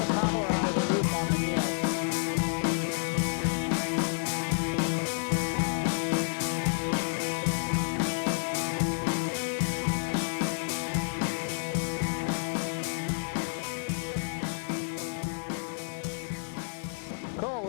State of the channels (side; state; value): right; silent; digital silence